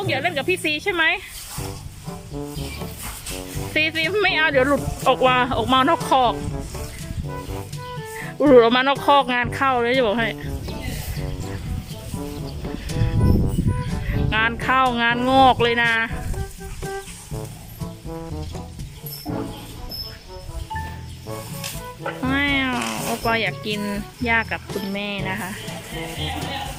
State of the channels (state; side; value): identical; both; correlation 1.00